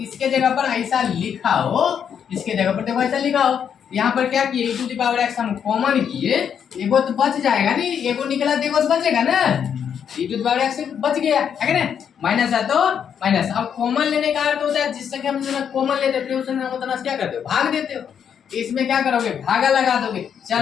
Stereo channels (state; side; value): quieter; right; 8.0 dB